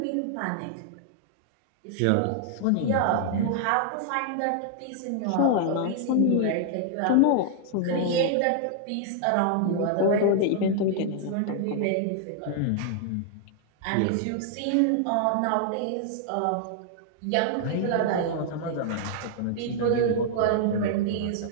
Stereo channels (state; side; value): different; both; correlation -0.01